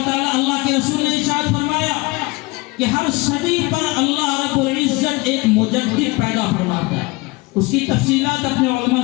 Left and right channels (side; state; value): right; quieter; 24.0 dB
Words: تعالیٰ، اللہ کے رسول نے ارشاد فرمایا کہ ہر صدی پر اللہ رب العزت ایک مجدد پیدا فرماتا ہے۔ اس کی تفصیلات اپنے علماء